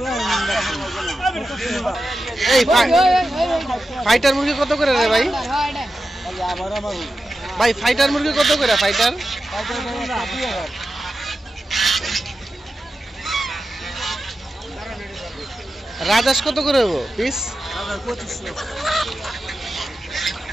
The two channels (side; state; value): both; normal; correlation 0.91